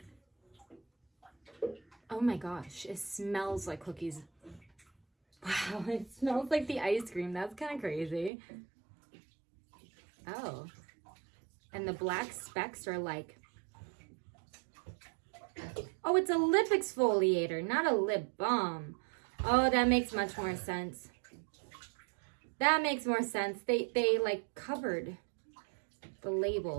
Oh my gosh, it smells like cookies. Wow, it smells like the ice cream. That's kind of crazy. Oh, and the black specks are like, oh, it's a lip exfoliator, not a lip balm. Oh, that makes much more sense. That makes more sense. They like covered the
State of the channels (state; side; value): drops out; left; at 8.3 s